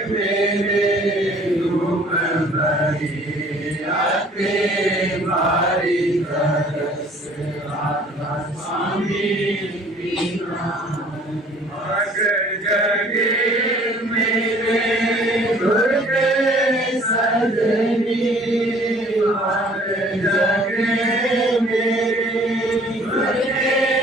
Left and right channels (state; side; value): normal; both; correlation 0.54